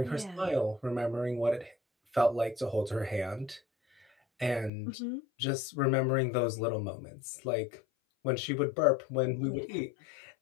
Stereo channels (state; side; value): drops out; right; at 4.7 s